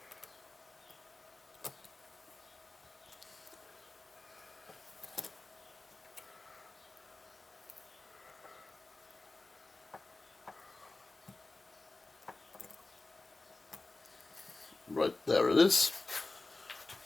Right there it is.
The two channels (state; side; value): quieter; right; 3.2 dB